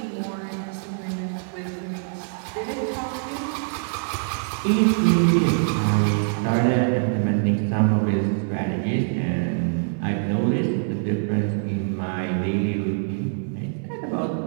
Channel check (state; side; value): silent; left; digital silence